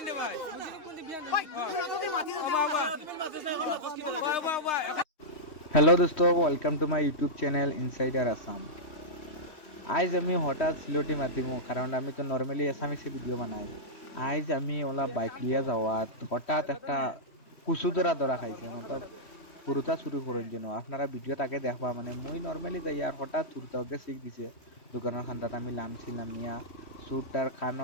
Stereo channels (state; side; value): late; right; 3.1 ms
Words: দে ভাই हेलो दोस्तों welcome to my YouTube channel insider Assam. आज আমি হঠাৎ সিলেটি মাতিমু কারণ আমি তো নরমালি আসামিসে ভিডিও বানাই। আজ আমি ওলা বাইক লিয়া যাওয়াত হঠাৎ একটা কুসু ধরা খাইছে মতলব পুরুতা চুরি করার জন্য। আপনারা ভিডিও তাকে দেখবা মানে মুই নরমালি যাই আর হঠাৎ চুরতা ওকে শিখ দিছে দোকানের খান্দাত আমি লামছিলাম মিয়া চুরটার